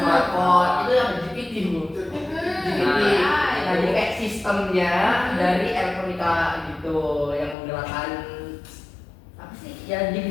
itu yang GPT Bu. GPT. Nah, jadi kayak sistemnya dari elektronika gitu yang menggerakkan apa sih? Ya di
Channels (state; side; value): drops out; right; at 7.6 s